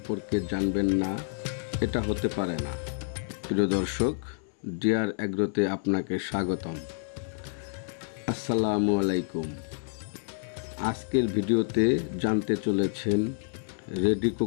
জানবেন না, এটা হতে পারে না। প্রিয় দর্শক, ডিয়ার অ্যাগ্রোতে আপনাকে স্বাগতম। আসসালামু আলাইকুম। আজকের ভিডিওতে জানতে চলেছেন রেডি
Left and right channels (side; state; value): right; silent; 59 dB below the other